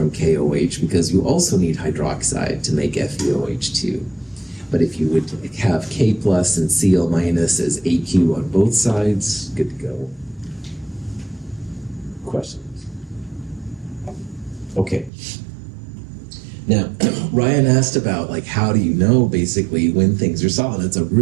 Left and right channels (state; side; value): drops out; left; at 15.1 s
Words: KOH because you also need hydroxide to make FeOH2. But if you would have K plus and Cl minus as AQ on both sides, good to go. Questions? Okay. Now, Ryan asked about, like, how do you know, basically, when things are solid? It's a